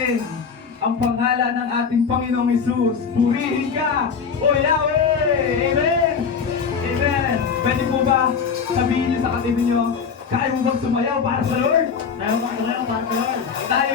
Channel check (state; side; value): quieter; right; 6.1 dB